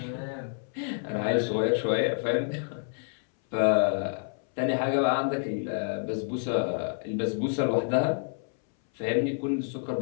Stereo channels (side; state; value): right; silent; 59 dB below the other